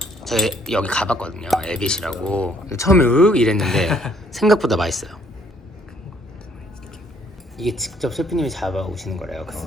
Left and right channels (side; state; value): both; normal; correlation 0.64